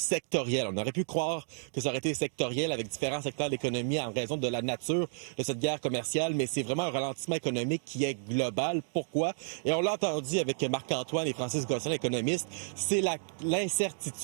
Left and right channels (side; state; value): left; silent; digital silence